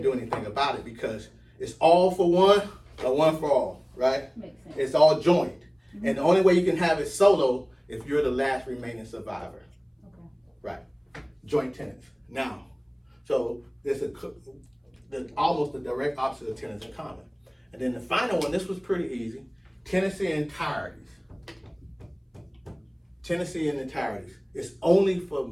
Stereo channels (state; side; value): identical; both; correlation 1.00